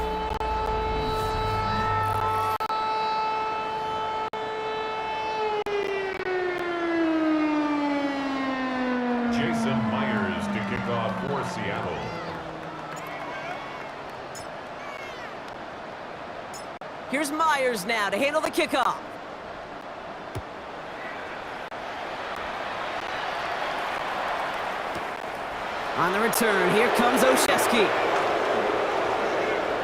Jason Myers to kick off for Seattle. Here's Myers now to handle the kickoff. On the return, here comes Olszewski.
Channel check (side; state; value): both; identical; correlation 1.00